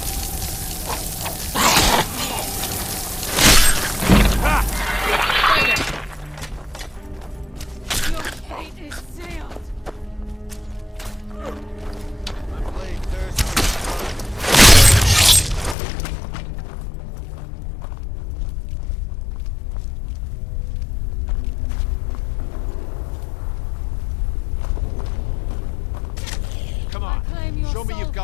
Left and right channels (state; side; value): drops out; right; at 15.8 s